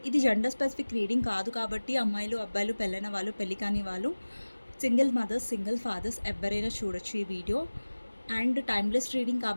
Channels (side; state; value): both; inverted; correlation -1.00